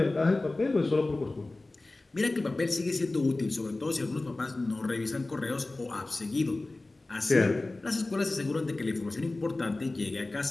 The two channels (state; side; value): quieter; right; 3.0 dB